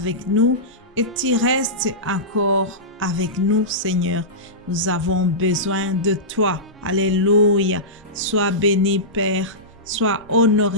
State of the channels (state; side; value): normal; both; correlation -0.17